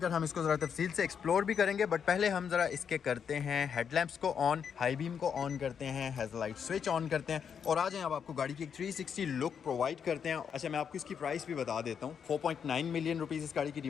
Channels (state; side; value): quieter; right; 7.3 dB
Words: हम इसको ज़रा तफसील से एक्सप्लोर भी करेंगे। बट पहले हम ज़रा इसके करते हैं हेडलैम्प्स को ऑन, हाई बीम को ऑन करते हैं, हेडलाइट स्विच ऑन करते हैं और आ जाएं अब आपको गाड़ी की एक 360 लुक प्रोवाइड करते हैं। अच्छा मैं आपको इसकी प्राइस भी बता देता हूँ। 4.9 मिलियन रुपीज़ इस गाड़ी की